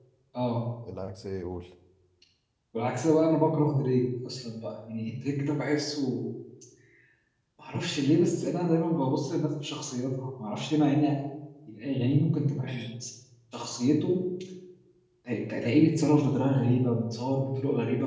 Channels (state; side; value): identical; both; correlation 1.00